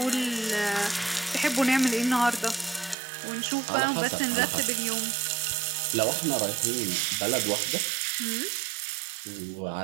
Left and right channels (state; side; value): drops out; left; at 3.0 s